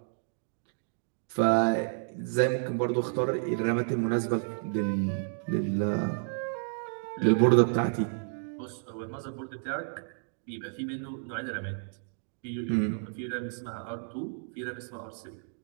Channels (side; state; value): left; silent; digital silence